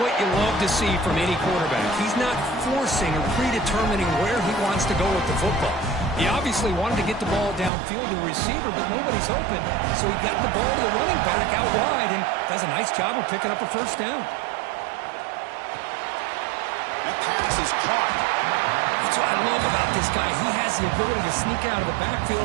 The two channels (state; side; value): drops out; left; at 7.7 s